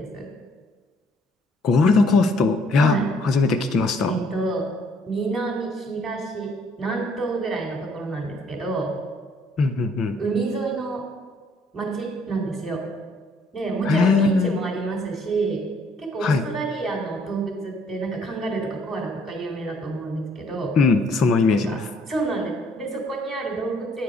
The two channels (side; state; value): both; normal; correlation 0.64